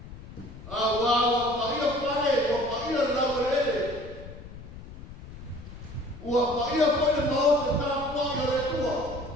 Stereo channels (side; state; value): left; noise; rumble, 15 dB below the sound